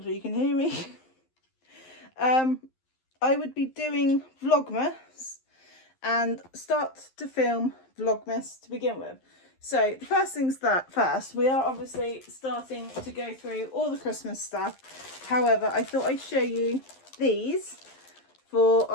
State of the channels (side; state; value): right; late; 11 ms